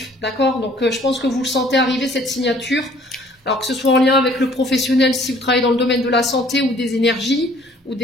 d'accord? Donc je pense que vous le sentez arriver cette signature. Alors que ce soit en lien avec le professionnel, si vous travaillez dans le domaine de la santé ou des énergies, ou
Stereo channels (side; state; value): both; normal; correlation 0.57